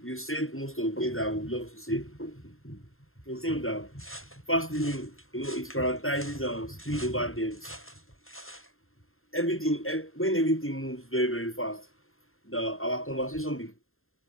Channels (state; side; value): late; right; 0.61 ms